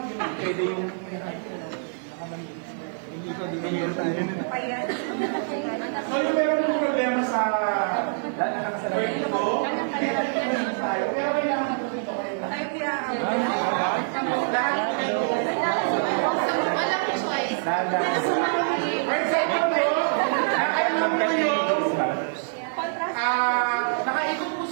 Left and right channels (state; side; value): silent; left; digital silence